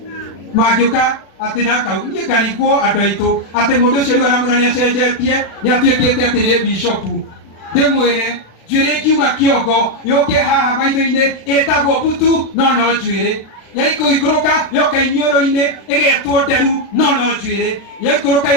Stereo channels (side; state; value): right; late; 36 ms